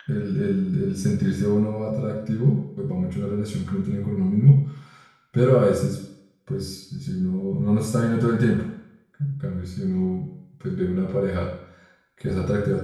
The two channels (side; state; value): both; identical; correlation 1.00